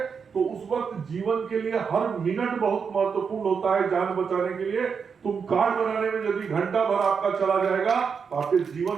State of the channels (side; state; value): left; quieter; 6.1 dB